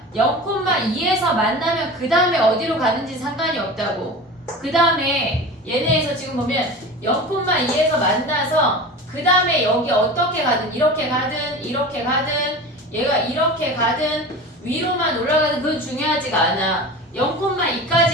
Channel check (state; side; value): normal; both; correlation 0.33